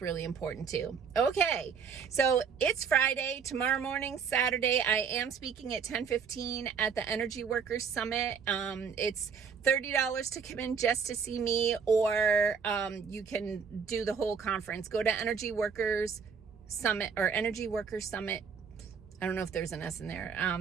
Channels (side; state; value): left; quieter; 6.3 dB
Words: really important too. Okay, so it's Friday. Tomorrow morning, Saturday, I am speaking at 10:15 at the Energy Workers Summit. It's $30 to come in just to see me, or you can do the whole conference. Go to Energy Workers Summit, or Energy Workers Summit. I don't know if there's an S in there.